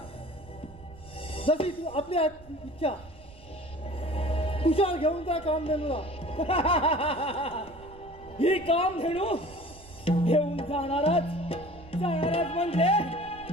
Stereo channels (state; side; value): noise; right; rumble, 20 dB below the sound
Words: जशी तू आपली इच्छा तुझ्या घेऊन जा कामधेनूला. ही काम धेनू घेऊन जाणारच म्हणजे